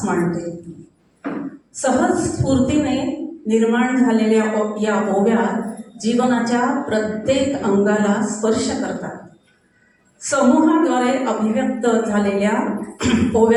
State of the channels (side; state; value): both; identical; correlation 1.00